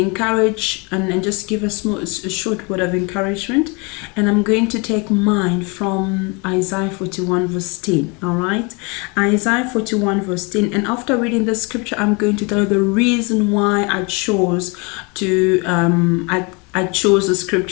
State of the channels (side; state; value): right; quieter; 30.1 dB